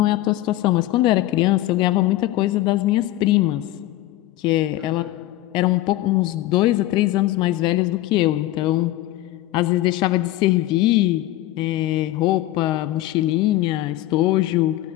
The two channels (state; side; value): quieter; right; 15.9 dB